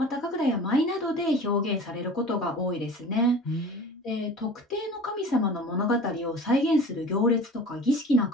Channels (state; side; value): normal; both; correlation 0.40